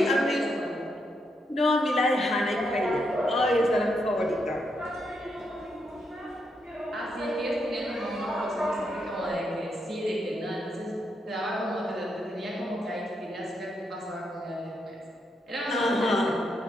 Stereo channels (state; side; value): normal; both; correlation 0.80